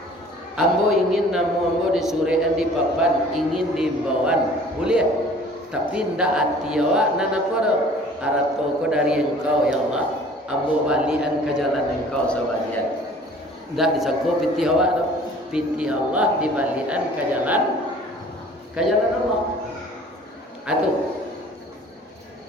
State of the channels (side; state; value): both; normal; correlation 0.50